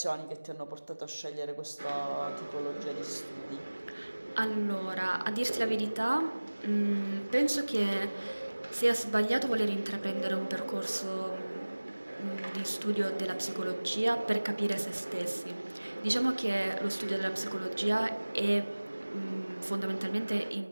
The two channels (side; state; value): both; inverted; correlation -1.00